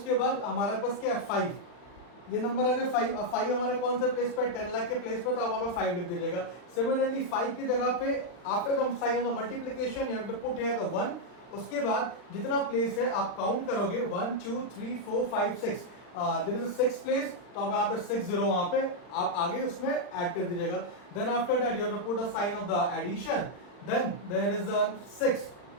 बाद हमारे पास क्या है 5, ये नंबर आ गया 5। अब 5 हमारे कौन से प्लेस पे, 10 लाख के प्लेस पे, तो आप वहां पे 5 लिख दीजिएगा। सिमिलरली 5 की जगह पे after the sign of the multiplication you have to put here the 1। उसके बाद जितना प्लेस है आप काउंट करोगे, 1 2 3 4 5 6, देयर इज अ 6 प्लेस, तो आप यहाँ पे 6 0 वहां पे आप आगे उसमें ऐड कर दीजिएगा। Then after that you have to put the sign of the addition, then there is a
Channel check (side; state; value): right; late; 40 ms